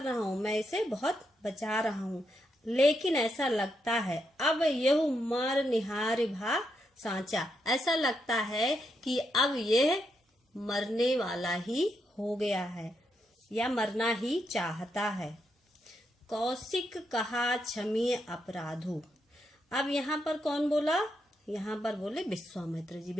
रहा हूँ, मैं इसे बहुत बचा रहा हूँ, लेकिन ऐसा लगता है अब यह मर निहार भा सांचा, ऐसा लगता है कि अब यह मरने वाला ही हो गया है या मरना ही चाहता है। कौशिक कहा क्षमीय अपराधु, अब यहाँ पर कौन बोला? यहाँ पर बोले विश्वामित्र जी।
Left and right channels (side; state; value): both; normal; correlation 0.81